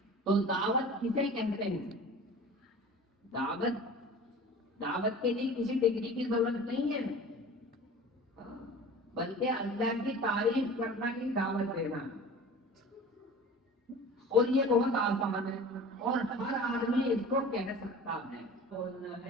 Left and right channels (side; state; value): both; normal; correlation 0.40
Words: تو دعوت کسے کہتے ہیں؟ دعوت کے لیے کسی ڈگری کی ضرورت نہیں ہے، بلکہ اللہ کی تعریف کرنا ہی دعوت دینا، اور یہ بہت آسان ہے اور ہر آدمی اس کو کہہ سکتا ہے۔ بولنا